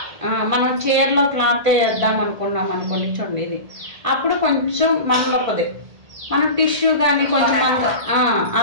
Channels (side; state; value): left; late; 1.8 ms